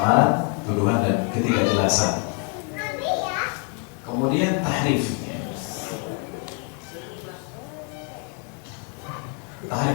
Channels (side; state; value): right; quieter; 39.8 dB